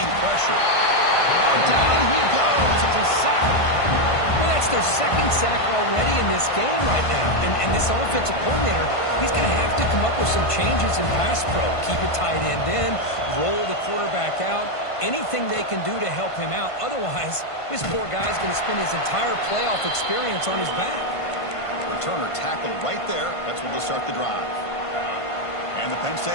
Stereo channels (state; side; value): late; right; 1.5 ms